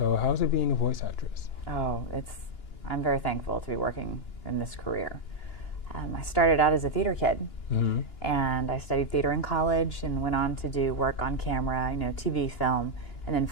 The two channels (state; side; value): late; right; 2.9 ms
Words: how's it being a voice actress? Oh, I'm very thankful to be working in this career. I started out as a theater kid, and I studied theater in college and went on to do work on camera, TV, film, and then